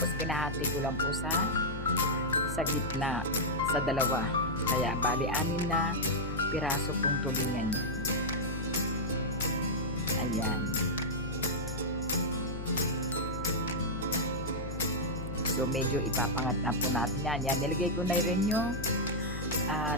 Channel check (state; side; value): noise; left; hum, 7 dB below the sound